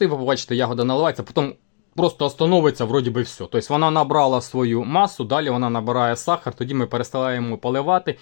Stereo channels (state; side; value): silent; right; digital silence